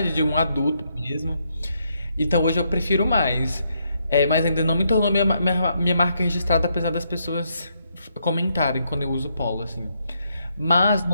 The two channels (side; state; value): both; inverted; correlation -0.76